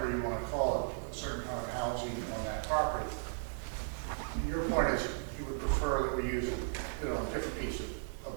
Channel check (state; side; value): silent; left; digital silence